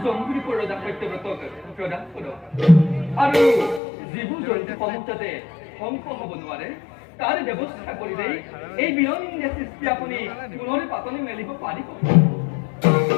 জম্বু দ্বীপৰ ৰজা সত্যব্ৰতক প্ৰদান কৰক আৰু যিবোৰ জন্তুসমূহ যাতে ধ্বংস হ'ব নোৱাৰে তাৰ ব্যৱস্থা কৰিলে এই বিনন্দীয় সৃষ্টি আপুনি পুনৰ পাতনি মেলিব পাৰিব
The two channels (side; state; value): right; drops out; at 3.8 s